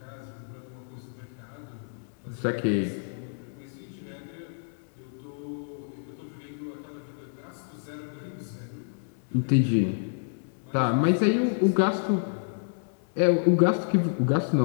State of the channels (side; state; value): right; silent; digital silence